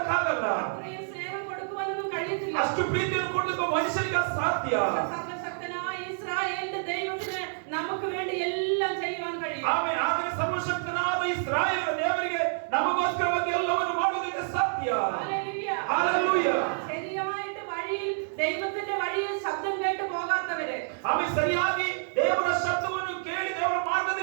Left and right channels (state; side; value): silent; left; digital silence